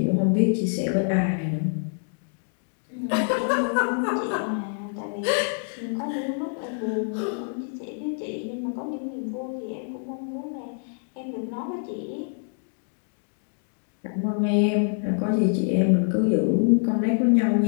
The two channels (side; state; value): right; silent; digital silence